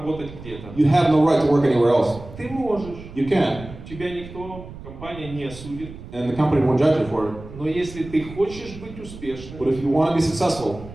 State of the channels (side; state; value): right; noise; rumble, 15 dB below the sound